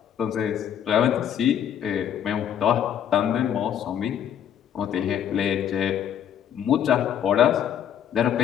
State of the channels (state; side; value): quieter; right; 9.5 dB